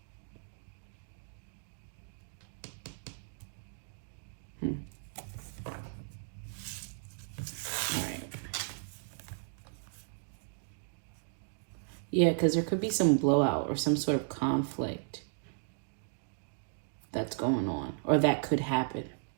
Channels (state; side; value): silent; left; digital silence